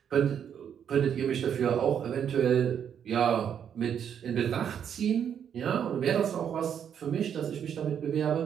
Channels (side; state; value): left; quieter; 8.5 dB